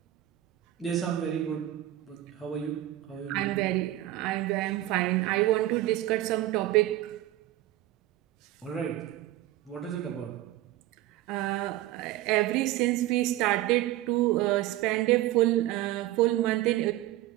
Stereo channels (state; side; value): quieter; left; 15.1 dB